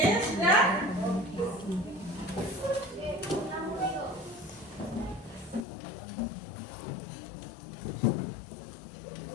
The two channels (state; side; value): drops out; right; at 5.6 s